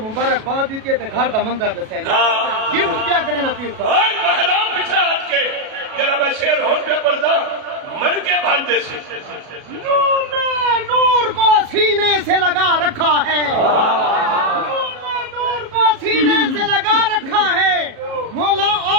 मुबारकबाद दी ते घर दा मंजर दसे गिफ्ट क्या करे ना पीर साहब। ओए महराम पीछे हट के जरा मैं शेर होर पे पर्दा मर के बांधे से नूर ने नूर को सीने से लगा रखा है, नूर ने नूर को सीने से लगा रखा है, मौला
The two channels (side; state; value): left; late; 37 ms